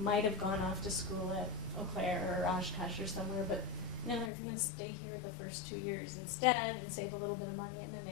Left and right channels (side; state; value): right; drops out; at 4.3 s